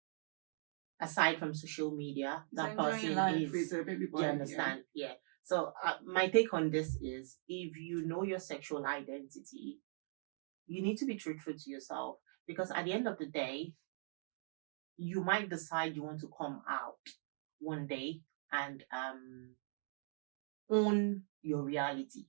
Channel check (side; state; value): left; silent; digital silence